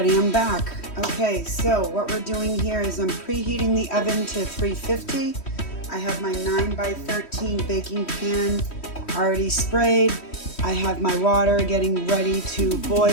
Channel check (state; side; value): late; right; 3.1 ms